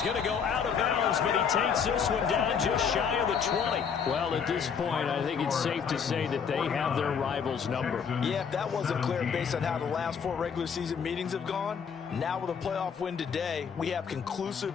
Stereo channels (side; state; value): right; quieter; 6.7 dB